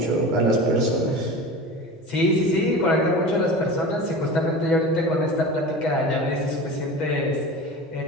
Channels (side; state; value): both; normal; correlation 0.32